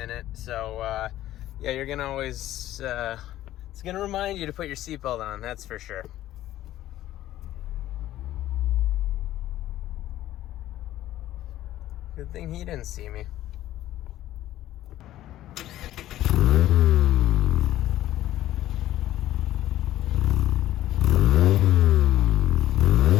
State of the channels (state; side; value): quieter; right; 13.9 dB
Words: So yeah, you're gonna always, it's gonna remind you to put your seatbelt on, that's for sure. Good thing he didn't see me.